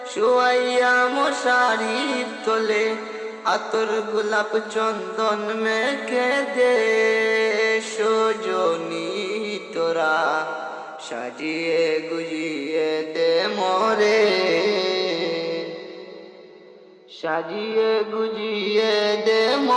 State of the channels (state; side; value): identical; both; correlation 1.00